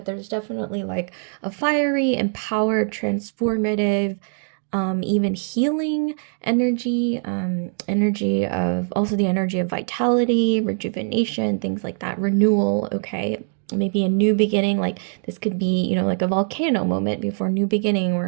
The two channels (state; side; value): silent; left; digital silence